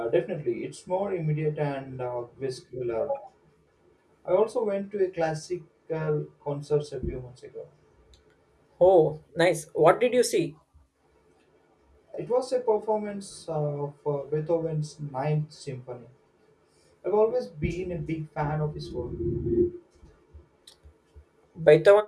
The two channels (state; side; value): identical; both; correlation 1.00